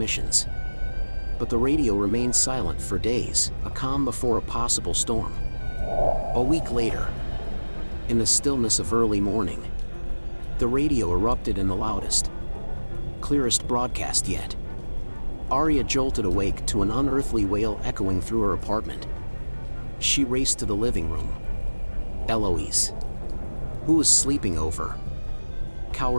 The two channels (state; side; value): inverted; both; correlation -1.00